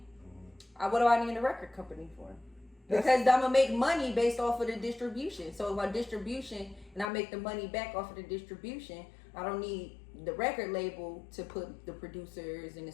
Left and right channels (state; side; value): drops out; right; at 7.1 s